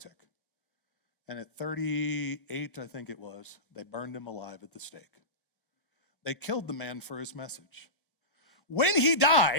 And at 38, I think it was, they burned him alive at the stake. They killed the man for his message. When he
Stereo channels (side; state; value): both; normal; correlation -0.20